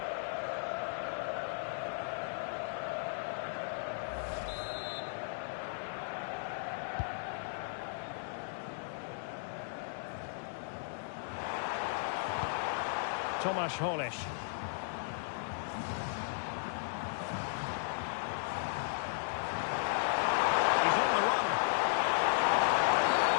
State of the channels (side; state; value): right; silent; digital silence